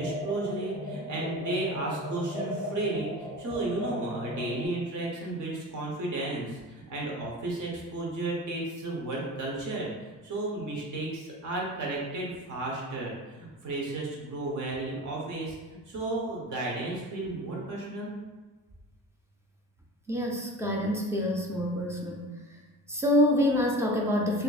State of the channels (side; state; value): both; normal; correlation 0.35